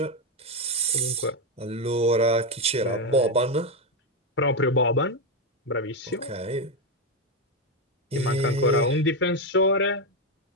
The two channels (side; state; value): both; normal; correlation 0.07